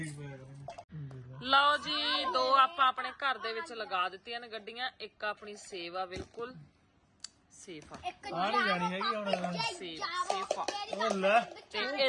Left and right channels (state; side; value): identical; both; correlation 1.00